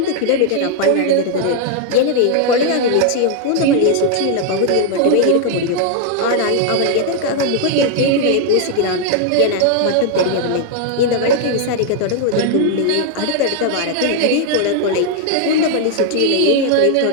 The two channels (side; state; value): both; different; correlation 0.00